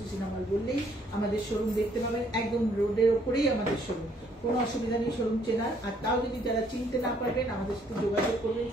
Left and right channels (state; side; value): normal; both; correlation 0.66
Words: সিনেমা হল বললেই আমাদের শোরুম দেখতে পাবেন। একদম রোডের ওপরেই আমাদের শোরুম, কোনো অসুবিধা নেই শোরুম চেনার। আর তাও যদি যারা চিনতে না পারবেন আমাদের সাথে যোগাযোগ করবেন